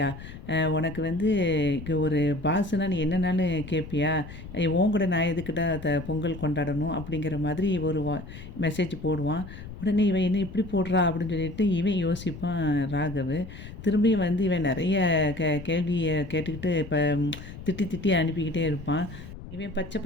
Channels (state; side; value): noise; left; rumble, 13 dB below the sound